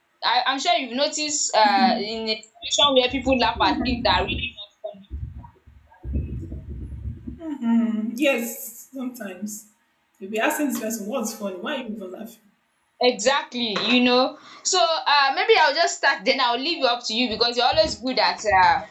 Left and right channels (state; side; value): identical; both; correlation 1.00